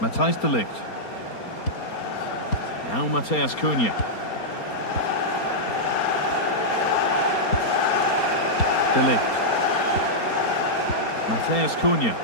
Matthijs de Ligt. Now Matheus Cunha. De Ligt. Matheus Cunha.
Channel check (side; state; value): right; late; 4.3 ms